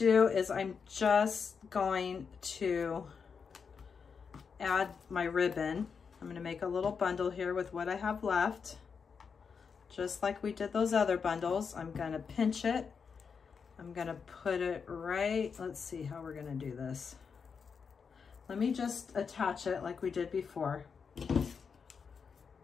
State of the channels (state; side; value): quieter; right; 5.9 dB